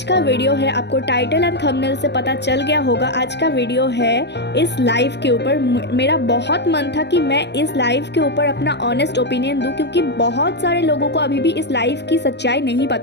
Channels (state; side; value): late; right; 0.50 ms